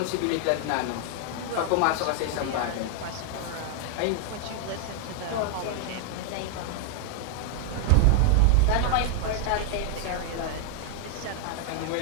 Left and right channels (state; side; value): different; both; correlation 0.00